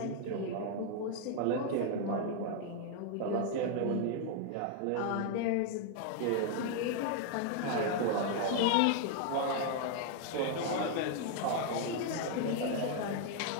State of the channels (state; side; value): different; both; correlation 0.00